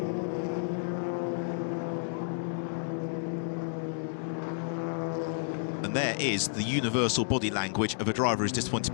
And there is the universal body language of a driver who's disappointed to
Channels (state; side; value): silent; right; digital silence